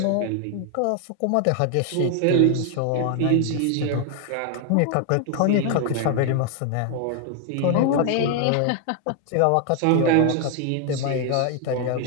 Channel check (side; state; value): both; different; correlation 0.00